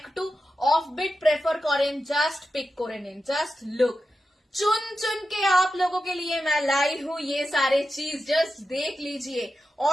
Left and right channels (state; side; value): normal; both; correlation 0.90